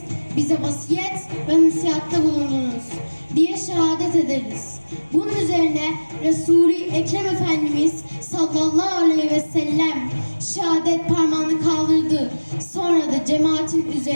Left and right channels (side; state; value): both; inverted; correlation -1.00